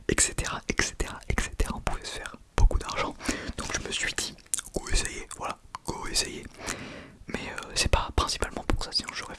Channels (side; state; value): both; identical; correlation 1.00